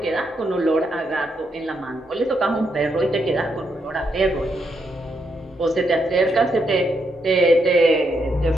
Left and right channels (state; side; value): normal; both; correlation 0.79